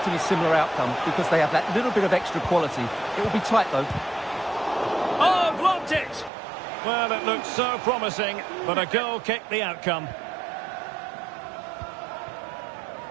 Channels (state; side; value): drops out; left; at 6.3 s